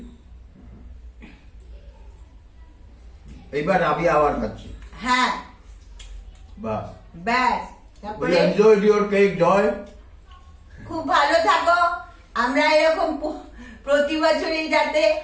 এইবার আমি আবার খাচ্ছি। হ্যাঁ, বাহ, ব্যাস। তারপরে এনজয় ইওর কেক জয়। খুব ভালো থাকো। আমরা এরকম প্রতি বছরই যাতে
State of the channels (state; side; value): identical; both; correlation 1.00